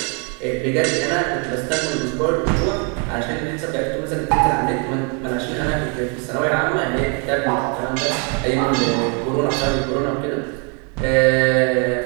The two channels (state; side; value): quieter; left; 36.5 dB